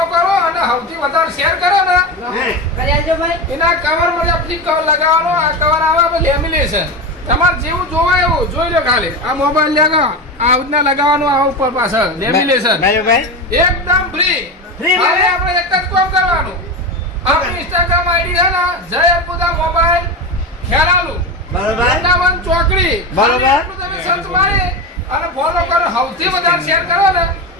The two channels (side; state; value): both; normal; correlation 0.20